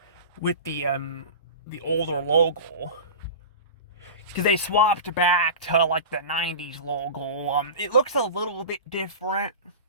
with the older logo, because they swapped back to like the 90s logo. It looks a little bit different.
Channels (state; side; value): inverted; both; correlation -0.32